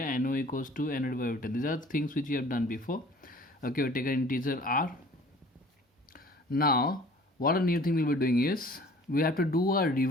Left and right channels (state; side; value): normal; both; correlation 0.50